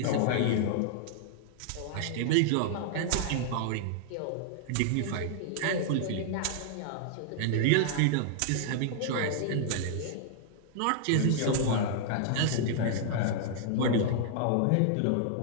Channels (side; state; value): both; different; correlation -0.01